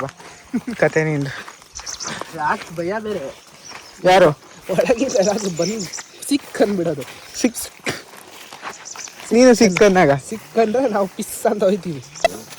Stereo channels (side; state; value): both; identical; correlation 1.00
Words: ಬಾ ಕತೆ ನಿಂದು. ಯಾಕೆ ಭಯ ಬೇರೆ. ಯಾರು? ಒಳಗಿಂದ ಯಾರಾದ್ರೂ ಬಂದು ಸಿಕ್ ಅಂದ್ಬಿಡೋದು. ನೀನು ಸಿಕ್ಕಂದಾಗ ಸಿಕ್ಕಂದ್ರೆ ನಾವು ಪಿಸ್ ಅಂತ ಹೋಯ್ತೀವಿ.